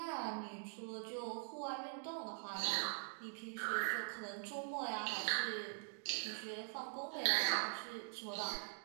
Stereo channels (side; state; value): left; silent; digital silence